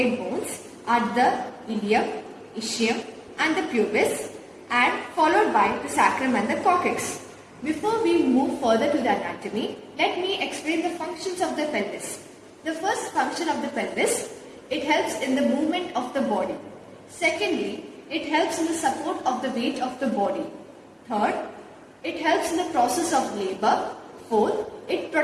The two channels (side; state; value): both; identical; correlation 1.00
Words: bones are the ilium, ischium and the pubis, and followed by the sacrum and the coccyx. Before we move further to the anatomy, let me explain the functions of the pelvis. The first function of the pelvis, it helps in the movement of the body. Secondly, it helps in the support of the weight of the body. Third, it helps in the process of labor. Fourth, it